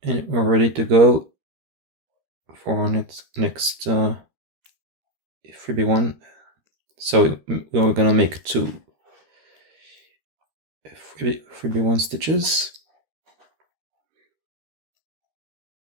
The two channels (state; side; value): late; left; 13 ms